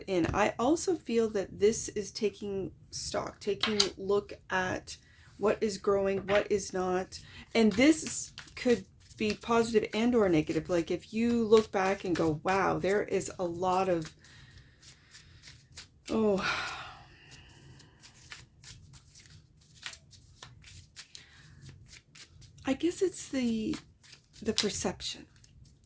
in. I also feel that this is taking stock, taking a look at what is growing, what is not. And this could be positive and or negative. Like if you look back and go, wow, there is a lot of, I guess it's the perception.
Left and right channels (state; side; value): identical; both; correlation 1.00